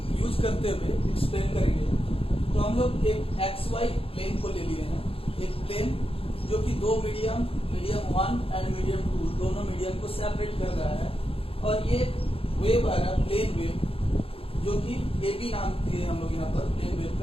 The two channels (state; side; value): late; right; 0.27 ms